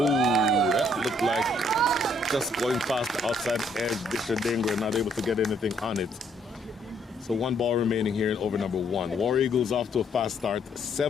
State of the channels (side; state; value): both; normal; correlation 0.67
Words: that looked like just going past the outside edge. Disha Dingra not able to get anything on it. So 1 ball remaining here in over number 1. War Eagles off to a fast start.